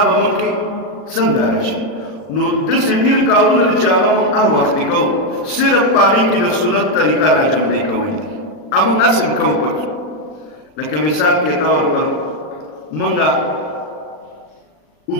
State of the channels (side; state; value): right; late; 39 ms